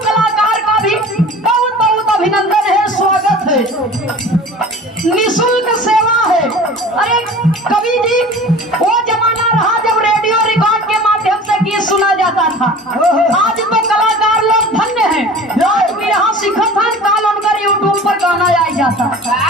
कलाकार का भी बहुत बहुत अभिनंदन है, स्वागत है। निःशुल्क सेवा है। अरे कवि जी, वो जमाना रहा जब रेडियो रिकॉर्ड के माध्यम से गीत सुना जाता था। आज तो कलाकार लोग धन्य हैं, आज भी यहाँ सिखत हैं, काल उनका यूट्यूब पर गाना आ जाता।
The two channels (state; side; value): normal; both; correlation 0.41